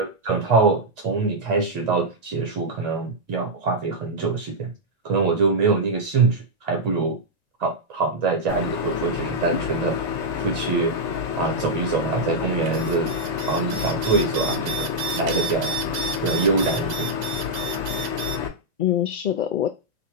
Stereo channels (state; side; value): late; left; 1.9 ms